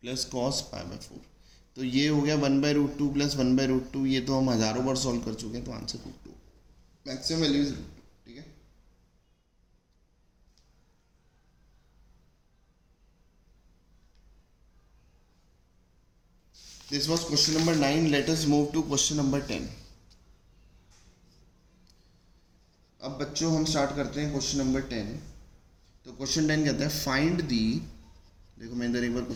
प्लस कॉस π/4, तो ये हो गया 1/√2 प्लस 1/√2, ये तो हम हज़ारों बार सॉल्व कर चुके हैं, तो आंसर √2, मैक्सिमम वैल्यू इज √2, ठीक है। This was question number 9. Let us move to question number 10. अब बच्चों हम स्टार्ट करते हैं क्वेश्चन नंबर 10। तो क्वेश्चन 10 कहता है फाइंड दी, देखो मैं इधर एक बार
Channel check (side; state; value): both; identical; correlation 1.00